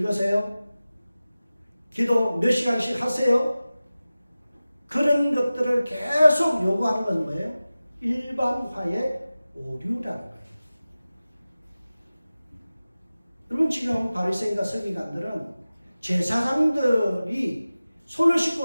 기도 몇 시간씩 하세요? 그런 것들을 계속 요구하는 건 뭐예요? 일반화의 오류라는 거예요. 여러분, 지금 바리새인과 서기관들은 제사장들이 손을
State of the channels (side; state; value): both; inverted; correlation -0.96